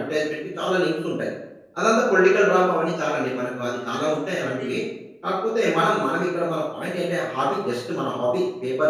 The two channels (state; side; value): identical; both; correlation 1.00